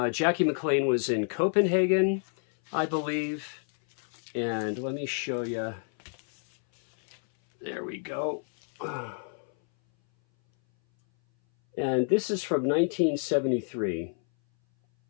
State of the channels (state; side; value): silent; right; 58 dB below the other